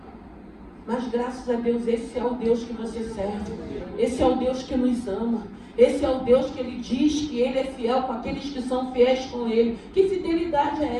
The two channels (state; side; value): identical; both; correlation 1.00